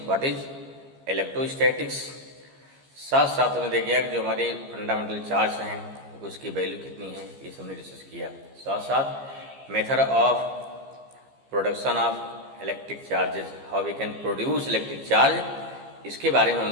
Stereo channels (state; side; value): late; left; 15 ms